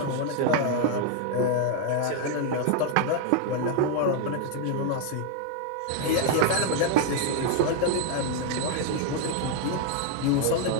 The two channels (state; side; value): different; both; correlation 0.01